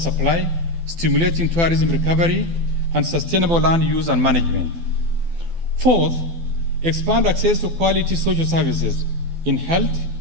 stimulating tourism recovery, and sustainable land use and management. Fourth, expand access to quality social services in health,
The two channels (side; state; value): left; late; 12 ms